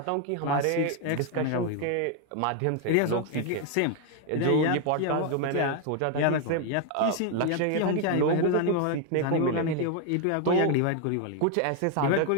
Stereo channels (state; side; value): different; both; correlation 0.01